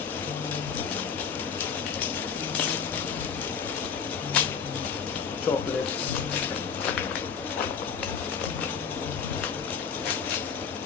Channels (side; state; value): right; quieter; 6.6 dB